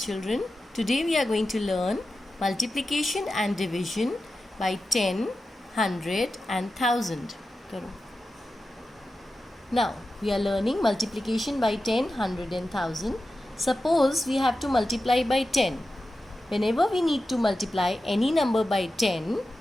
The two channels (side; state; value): both; normal; correlation 0.92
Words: Today we are going to learn multiplication and division by 10, 100 and 1000. Now, we are learning multiplication by 10, 100 and 1000. Suppose we have to multiply by 10. Whenever we need to multiply any number by 10,